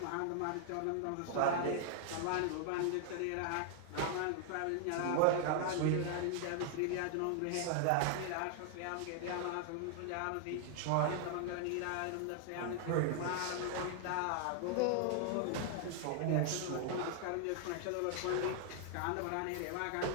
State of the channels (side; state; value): both; different; correlation 0.00